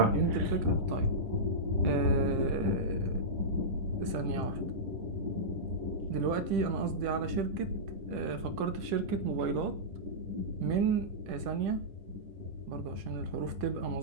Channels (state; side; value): late; left; 10 ms